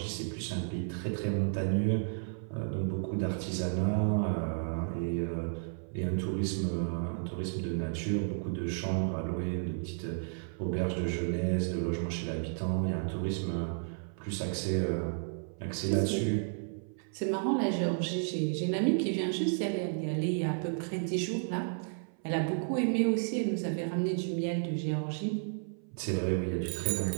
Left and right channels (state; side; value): silent; left; 56 dB below the other